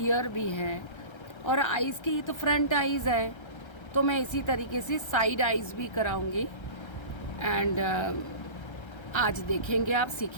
ईयर भी है और आईज़ की तो फ्रंट आईज़ है, तो मैं इसी तरीके से साइड आईज़ भी कराऊंगी. एंड आज देखेंगे, आप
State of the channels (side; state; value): right; late; 1.3 ms